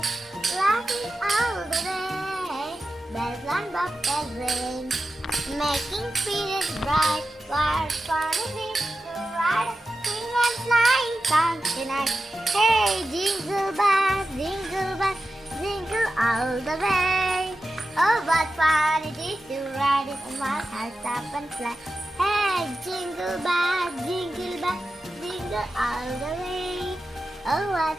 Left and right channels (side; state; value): both; normal; correlation 0.92